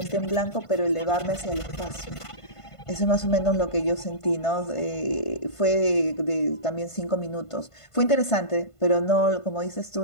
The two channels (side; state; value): right; late; 1.5 ms